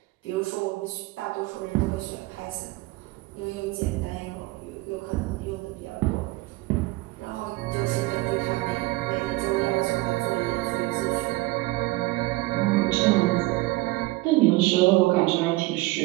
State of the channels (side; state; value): left; quieter; 20.7 dB